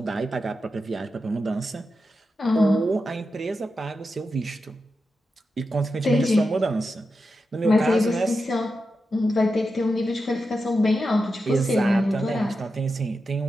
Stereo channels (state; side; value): normal; both; correlation 0.89